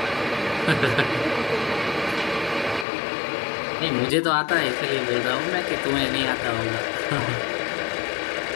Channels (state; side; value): drops out; right; at 2.9 s